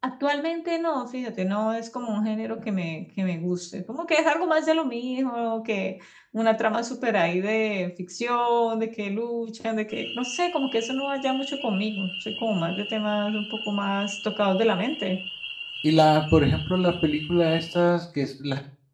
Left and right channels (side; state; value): both; identical; correlation 1.00